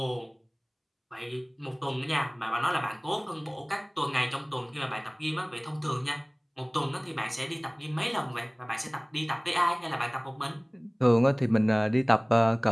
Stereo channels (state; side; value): identical; both; correlation 1.00